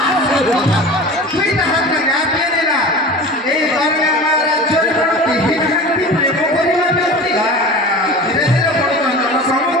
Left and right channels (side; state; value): both; normal; correlation 0.35